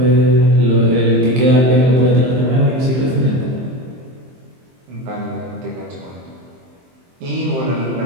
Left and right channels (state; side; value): late; left; 23 ms